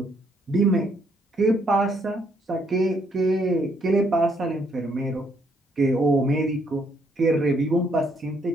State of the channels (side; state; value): both; normal; correlation 0.70